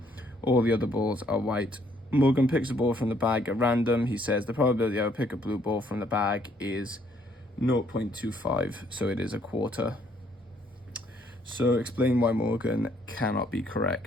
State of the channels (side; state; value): both; normal; correlation 0.66